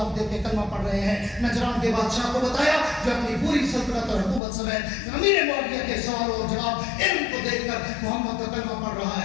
دیکھ کے کلمہ پڑھ رہے ہیں. نجران کے بادشاہ کو بتایا جو اپنی پوری سلطنت اور حکومت سمیت امیر معاویہ کے سوال اور جواب علم کو دیکھ کر محمد کا کلمہ پڑھ رہا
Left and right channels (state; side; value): drops out; right; at 4.4 s